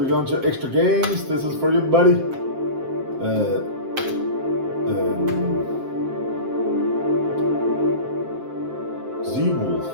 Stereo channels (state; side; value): late; left; 7.6 ms